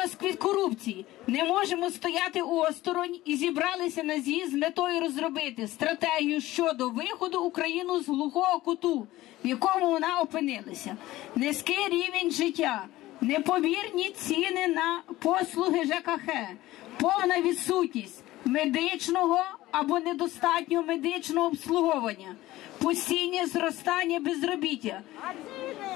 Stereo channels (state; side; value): quieter; right; 16.8 dB